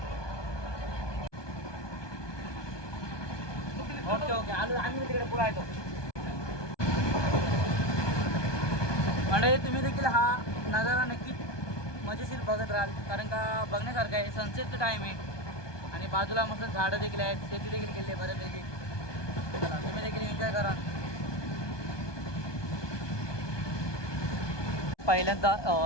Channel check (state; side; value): late; right; 1.2 ms